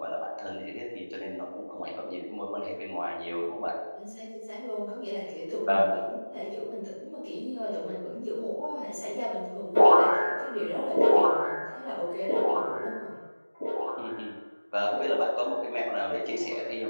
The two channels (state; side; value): inverted; both; correlation -1.00